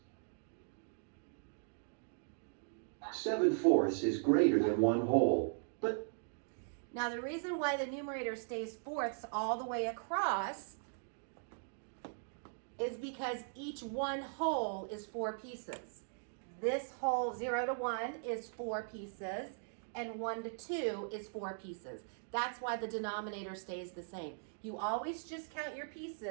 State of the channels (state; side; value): silent; left; digital silence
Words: 7/4 is greater than 1 whole, but now the reason why the numerator stays fourths all the way across is because each 1 whole is 4 pieces. This whole 0 to 1 is 4 pieces, and 1 to 2 is 4 pieces. That's why the denominator stays the same. You always just count your